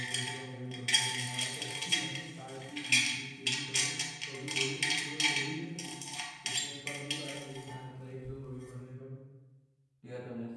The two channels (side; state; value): both; identical; correlation 1.00